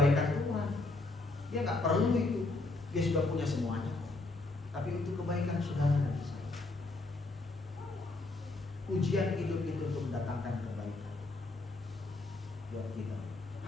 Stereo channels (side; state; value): right; quieter; 3.1 dB